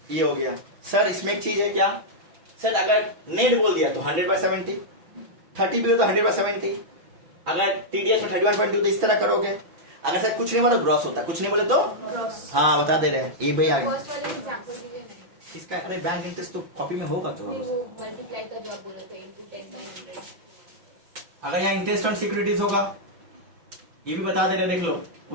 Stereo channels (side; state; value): left; late; 6.0 ms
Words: ये हो गया सर। इसमें एक चीज है क्या सर, अगर नेट बोल दिया तो 100/70, 30 भी हो तो 100/70। अगर टीडीएस में 31.2 तो इस तरह करोगे। अगर सर कुछ नहीं बोले तो ग्रॉस होता है, कुछ नहीं बोले तो ग्रॉस। हाँ बता दे रहे हैं ये भाई आगे फर्स्ट वाले एग्जांपल दीजिए ना। इसका। अरे बैंक इंटरेस्ट तो कॉपी में होगा तो नहीं वो मल्टीप्लाई का जो आप बोल रहे थे इनटू 10/100। अगर यहाँ इंटरेस्ट ऑन सिक्योरिटीज होगा, ये भी बता दे रहे, देख लो